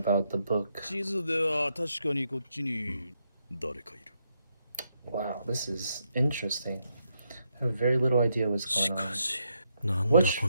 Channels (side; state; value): both; inverted; correlation -0.79